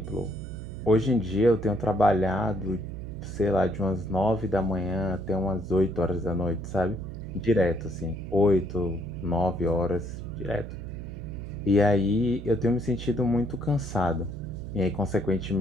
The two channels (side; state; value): right; noise; hum, 9 dB below the sound